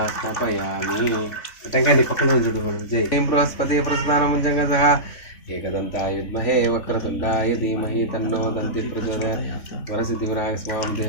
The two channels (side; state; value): right; late; 3.6 ms